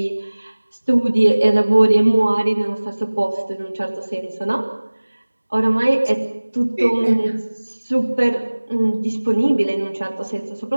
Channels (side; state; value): both; inverted; correlation -1.00